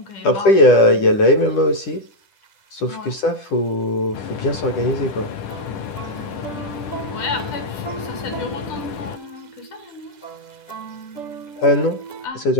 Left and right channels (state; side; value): late; right; 10 ms